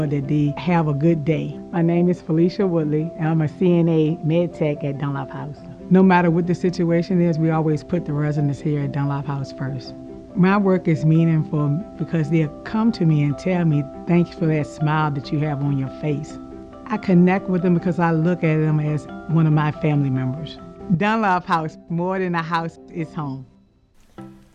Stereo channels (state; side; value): identical; both; correlation 1.00